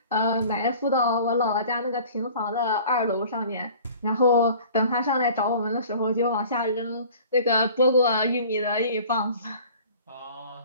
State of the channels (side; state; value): both; inverted; correlation -0.46